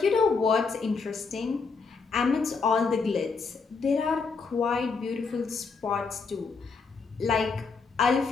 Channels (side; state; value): right; quieter; 4.8 dB